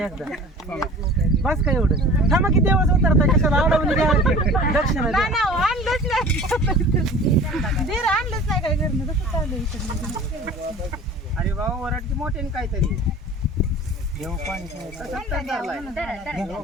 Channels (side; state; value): both; normal; correlation 0.42